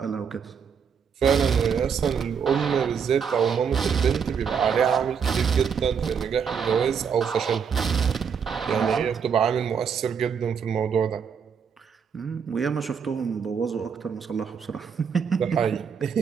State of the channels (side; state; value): left; quieter; 6.8 dB